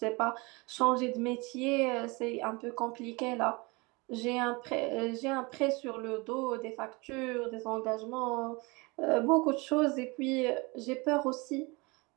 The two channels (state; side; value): quieter; left; 26.4 dB